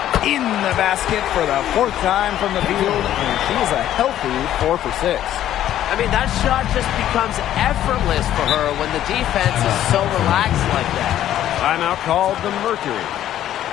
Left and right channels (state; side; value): quieter; right; 12.0 dB